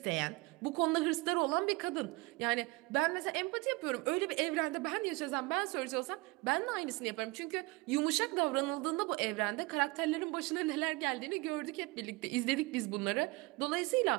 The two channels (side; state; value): left; quieter; 24.2 dB